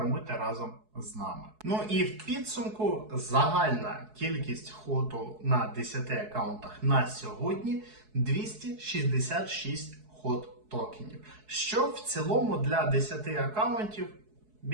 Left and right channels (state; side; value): late; left; 4.7 ms